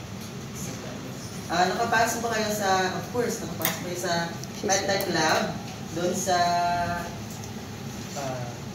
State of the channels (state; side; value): identical; both; correlation 1.00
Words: Nakapasok ba kayo sa, of course, nakapasok kayo sa medtech lab, doon sa,